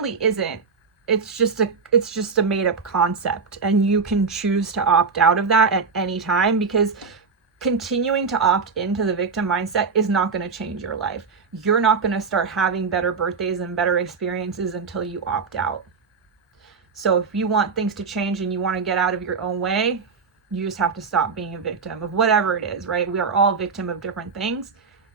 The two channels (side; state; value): left; quieter; 5.1 dB